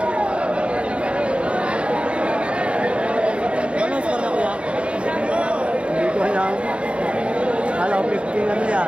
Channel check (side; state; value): left; late; 0.058 ms